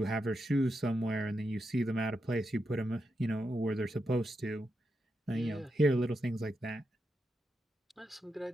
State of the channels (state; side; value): normal; both; correlation 0.85